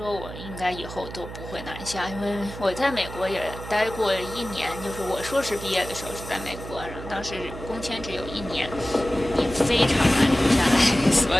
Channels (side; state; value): right; noise; hum, 11 dB below the sound